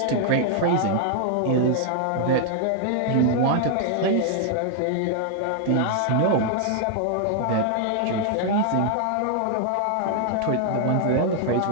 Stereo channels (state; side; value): different; both; correlation 0.00